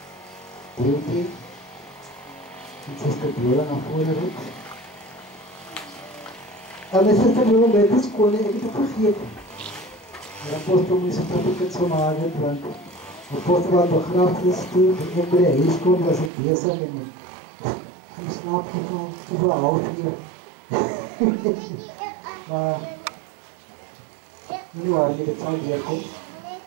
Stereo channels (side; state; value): left; drops out; at 16.3 s